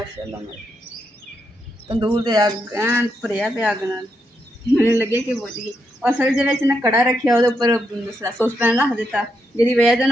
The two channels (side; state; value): both; normal; correlation 0.81